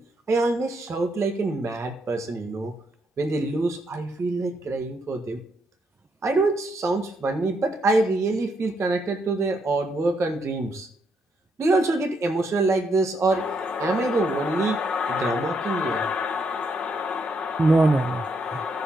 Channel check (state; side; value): normal; both; correlation 0.76